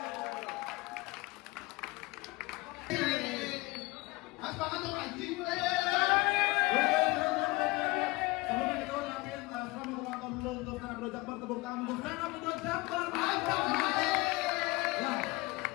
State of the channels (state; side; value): quieter; right; 22.3 dB